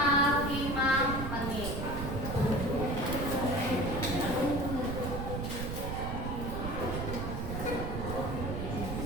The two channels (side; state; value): right; noise; rumble, 3 dB below the sound